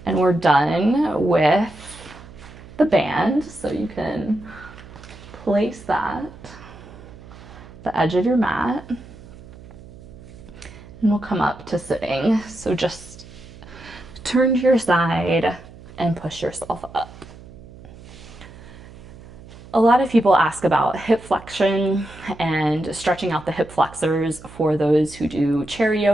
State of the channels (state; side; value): noise; right; hum, 18 dB below the sound